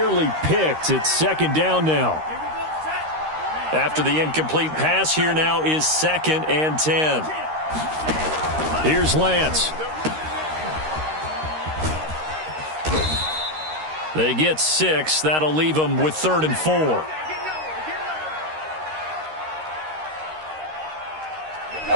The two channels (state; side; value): late; left; 13 ms